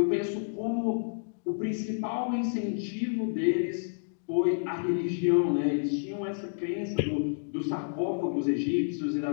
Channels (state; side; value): silent; right; digital silence